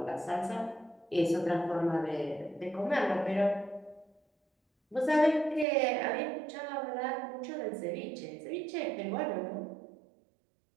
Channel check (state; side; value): drops out; left; at 5.7 s